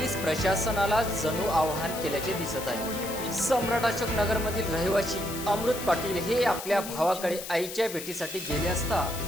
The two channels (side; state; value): left; noise; hiss, 9 dB below the sound